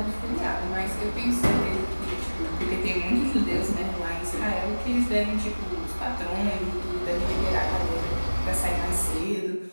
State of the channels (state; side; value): inverted; both; correlation -1.00